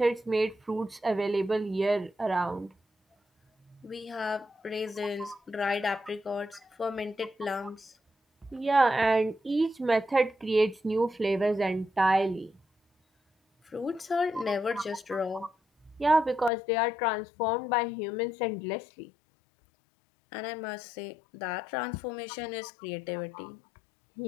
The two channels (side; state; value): right; drops out; at 16.5 s